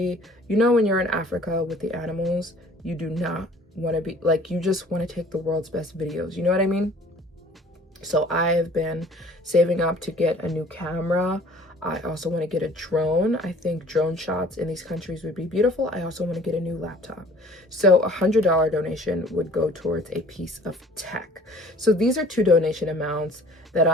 You know, when you're in Africa with the animals, you do not want to be like, you just want to take the world's best videos. You know what I mean? So I have been saving up to get a new camera. I also want to get a drone. I think drone shots in these countries would be beautiful. I also want to get a new laptop. So $100 donation would go towards a piece of tech. So these are two donation amounts that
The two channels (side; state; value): both; normal; correlation 0.51